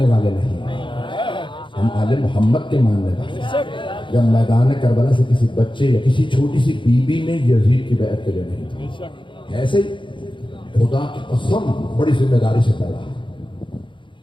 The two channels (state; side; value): late; right; 0.24 ms